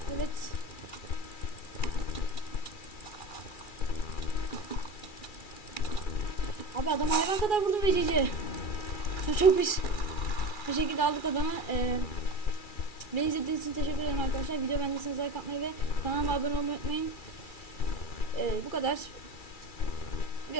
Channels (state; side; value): late; right; 2.3 ms